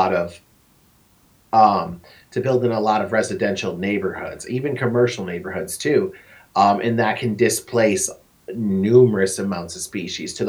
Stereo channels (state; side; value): identical; both; correlation 1.00